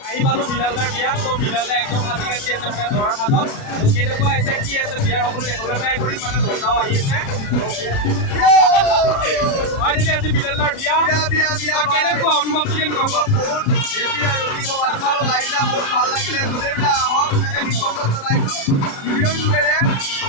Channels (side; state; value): right; late; 37 ms